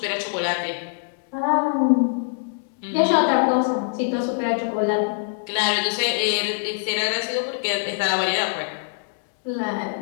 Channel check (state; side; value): silent; right; digital silence